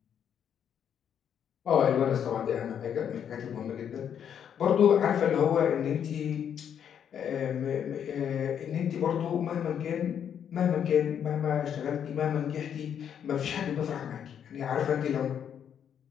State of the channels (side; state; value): right; quieter; 8.6 dB